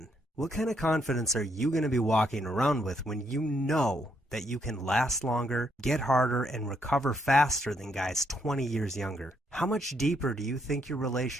What kind of confidence are you going to be walking around with when you know that you can last longer, get harder, and recover faster than guys 20 years younger? How much deeper do you think your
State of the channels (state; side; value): normal; both; correlation 0.74